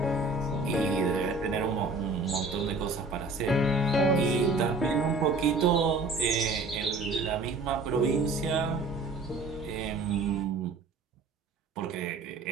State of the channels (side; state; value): left; quieter; 3.5 dB